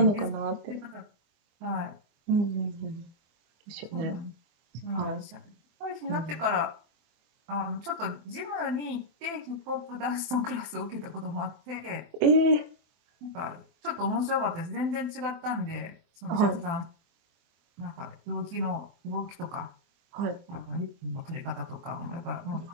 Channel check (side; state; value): left; late; 24 ms